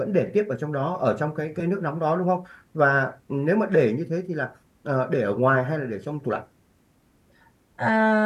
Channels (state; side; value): identical; both; correlation 1.00